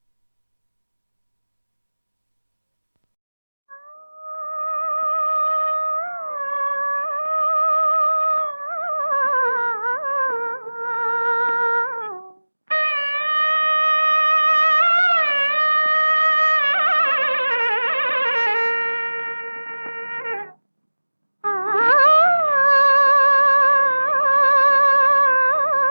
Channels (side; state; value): both; inverted; correlation -1.00